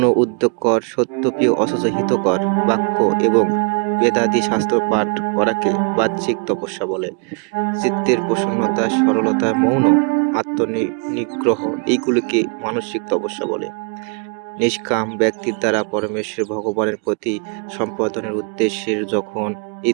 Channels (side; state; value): left; quieter; 37.6 dB